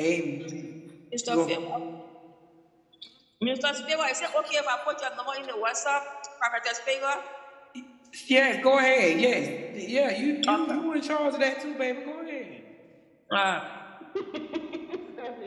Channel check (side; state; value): both; identical; correlation 1.00